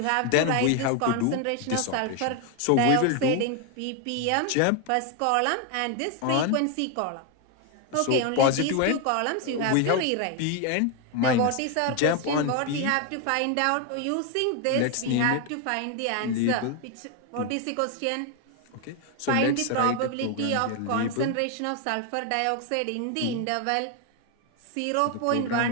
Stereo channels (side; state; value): both; different; correlation 0.01